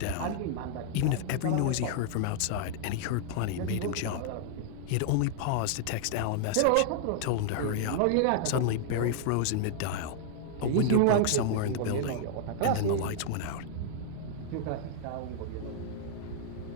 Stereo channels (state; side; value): different; both; correlation -0.01